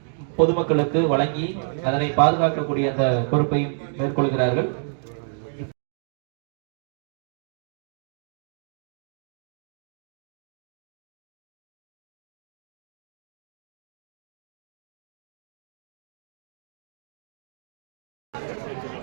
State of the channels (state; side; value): silent; left; digital silence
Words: பொதுமக்களுக்கு வழங்கி அதனை பாதுகாக்கக்கூடிய அந்த பொறுப்பையும் மேற்கொள்கிறார்கள்.